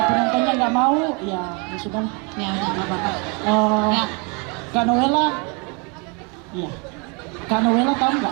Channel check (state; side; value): quieter; left; 32.5 dB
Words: penontonnya nggak mau, ya sudah. Ya udah nggak apa-apa. Ya. Kak Noela, iya. Kak Noela tahu